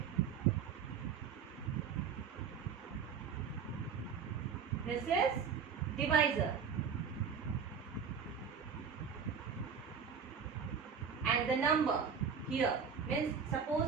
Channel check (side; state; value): left; quieter; 6.6 dB